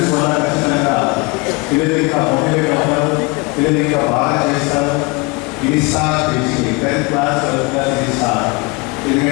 వల్ల ఖచ్చితంగా పిల్లలు ఇంకా మోటివేట్ అవుతారు, పిల్లలు ఇంకా బాగా చేస్తారు. ఇది స్టార్ట్ చేసి 10th క్లాస్ 12th క్లాస్ ఇది స్టార్ట్.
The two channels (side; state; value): right; quieter; 26.5 dB